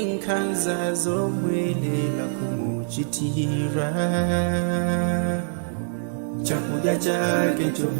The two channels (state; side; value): silent; left; digital silence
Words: nkhanza zomwe lero kumuchitira. Chakudya chake